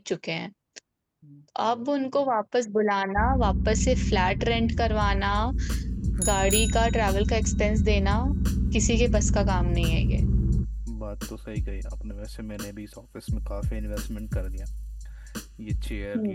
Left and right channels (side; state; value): both; identical; correlation 1.00